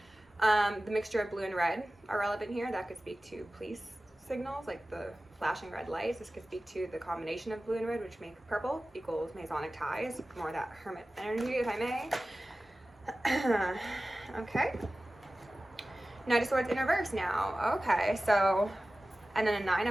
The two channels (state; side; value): normal; both; correlation 0.96